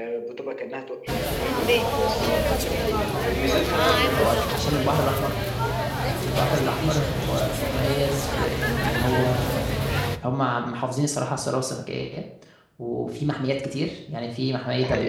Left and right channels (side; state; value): both; identical; correlation 1.00